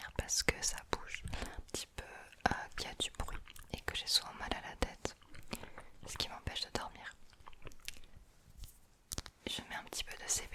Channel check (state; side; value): identical; both; correlation 1.00